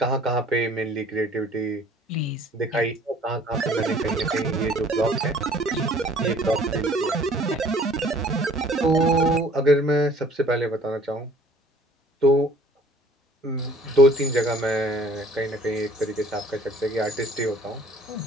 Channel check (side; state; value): both; normal; correlation 0.53